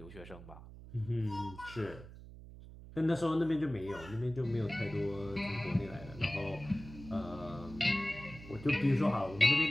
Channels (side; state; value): right; noise; hum, 16 dB below the sound